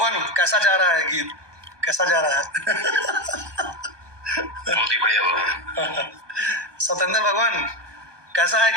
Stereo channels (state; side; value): late; left; 1.2 ms